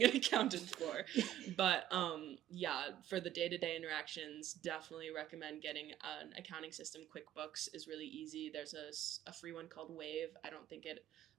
an accountant for. But for the day-to-day interactions, definitely recommend getting an accounting system. QuickBooks is really easy. There's a free one called Wave. I don't think it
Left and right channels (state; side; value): quieter; left; 11.9 dB